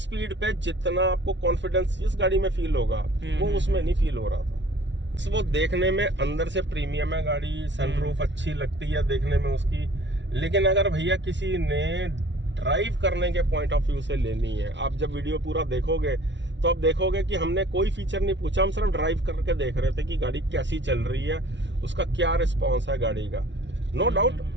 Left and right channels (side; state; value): left; late; 0.52 ms